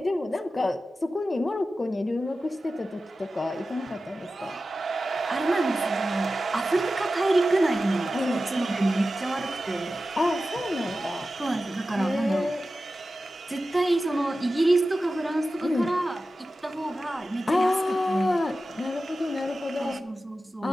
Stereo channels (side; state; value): both; normal; correlation 0.94